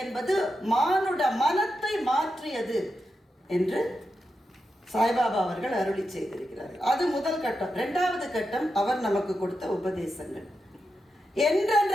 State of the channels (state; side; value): normal; both; correlation 0.88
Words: என்பது மானுட மனத்தை மாற்றியது என்று சாய்பாபா அவர்கள் அருளி செய்திருக்கிறார்கள். அது முதல் கட்டம். 2வது கட்டம் அவர் நமக்கு கொடுத்த உபதேசங்கள்.